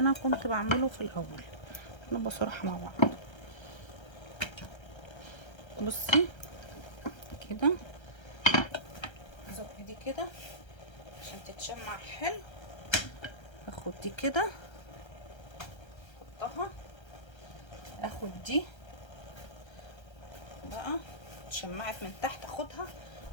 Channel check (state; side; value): late; right; 1.3 ms